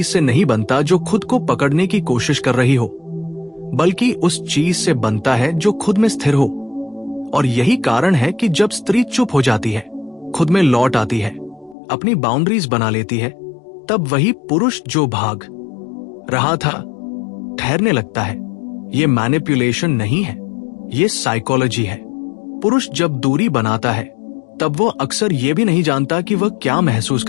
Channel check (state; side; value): drops out; right; at 11.8 s